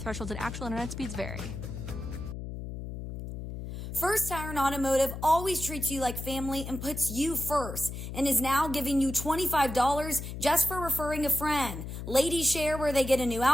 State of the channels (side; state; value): left; noise; hum, 8 dB below the sound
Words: and actual internet speeds vary. First Tire Automotive always treats you like family and puts you first and is now giving you $25 just for referring a friend. Ladies share where they get a new